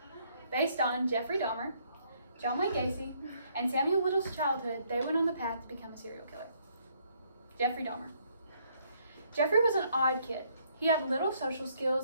Based on Jefree Dahmer, Wayn Gacy, and Samuel Little's childhood, they went on the path to become a serial killer. Jefree Dahmer. Jefree was an odd kid. He had little social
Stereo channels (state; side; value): inverted; both; correlation -0.68